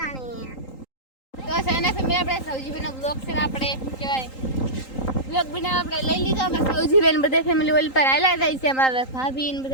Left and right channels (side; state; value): right; late; 3.8 ms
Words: તો સેના ફેમિલી આપણે સૌજીભાઈનો બ્લોગ છે ને આપણે કહેવાય બ્લોગ બનાવ આપણે લઈ લીધો. અમે સૌજીભાઈ બધા ફેમિલી ઓલ પર આયલા જાય છે. અમારા ભાભી ને